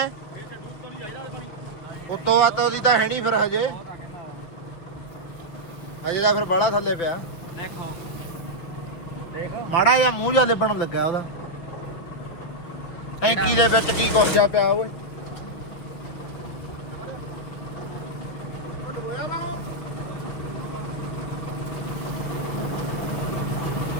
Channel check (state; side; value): late; right; 5.9 ms